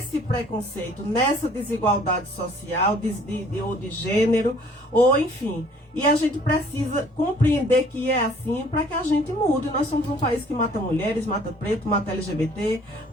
preconceito, nessa desigualdade social, ou de gênero, ou enfim. E a gente precisa compreender que é assim para que a gente mude. Nós somos um país que mata mulheres, mata preto, mata LGBT,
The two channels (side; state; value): both; normal; correlation 0.56